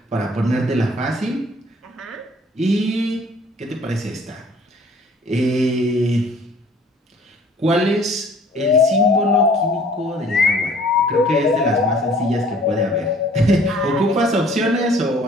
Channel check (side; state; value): both; normal; correlation 0.54